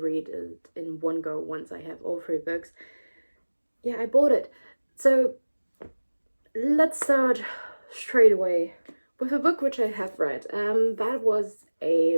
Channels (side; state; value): both; inverted; correlation -1.00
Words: read it in one go once I have all 3 books. Yeah, I bought it. So let's start straight away with a book which I have read. That was a